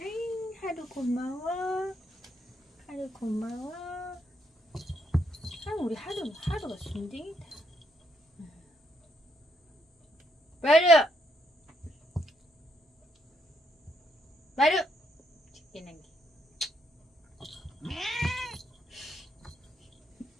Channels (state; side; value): normal; both; correlation 0.74